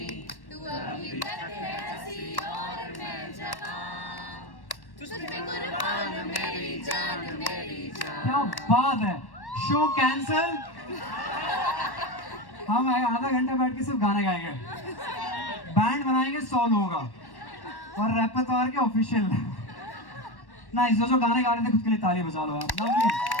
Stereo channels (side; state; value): right; late; 1.1 ms